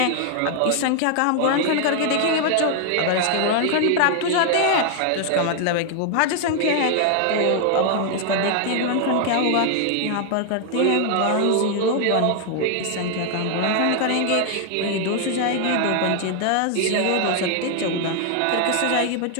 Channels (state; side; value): different; both; correlation 0.00